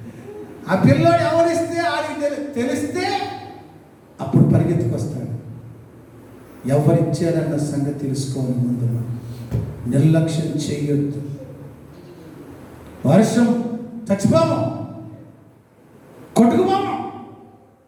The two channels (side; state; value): both; identical; correlation 1.00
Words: ఆ పిల్లోడు ఎవరిస్తే ఆడికి తెలిస్తే అప్పుడు పరిగెత్తుకొస్తాడు. ఎవరిచ్చారన్న సంగతి తెలుసుకోవాలి ముందు. నిర్లక్ష్యం చేయొద్దు. వర్షం చచ్చిపోము, కొట్టుకుపోము.